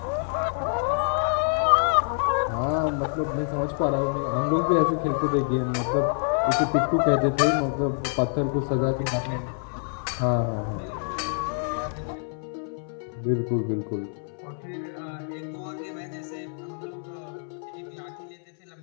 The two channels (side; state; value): right; silent; 61 dB below the other